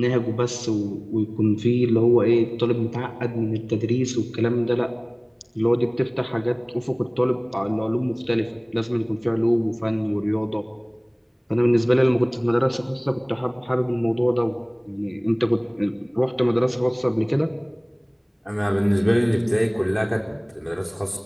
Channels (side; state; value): both; identical; correlation 1.00